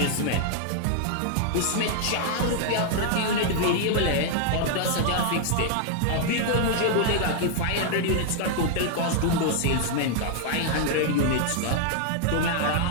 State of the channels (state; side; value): different; both; correlation 0.00